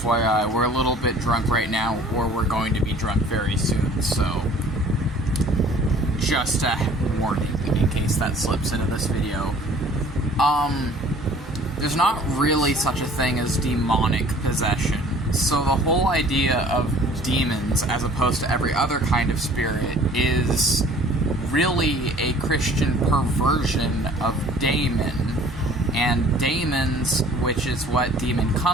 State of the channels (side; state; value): both; normal; correlation 0.51